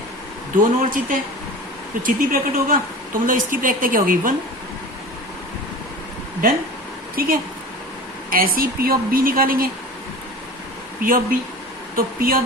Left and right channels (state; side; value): normal; both; correlation 0.36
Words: दोनों और चित्त है तो चित्त ही प्रकट होगा, तो मतलब इसकी प्रायिकता क्या होगी, 1, डन, ठीक है। ऐसे ही पी ऑफ बी निकालेंगे, पी ऑफ बी, तो पी ऑफ